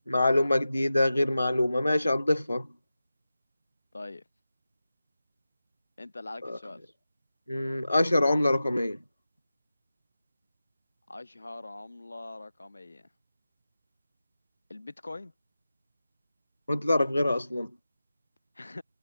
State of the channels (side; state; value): both; inverted; correlation -0.93